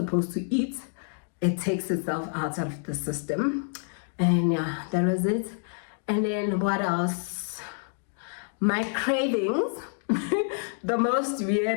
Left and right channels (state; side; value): silent; right; 59 dB below the other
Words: to eat, it takes itself out of the system. And yeah, that was it. And then what else? My cravings. The most